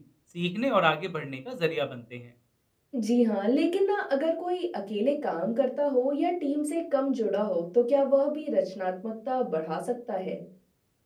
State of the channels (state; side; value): identical; both; correlation 1.00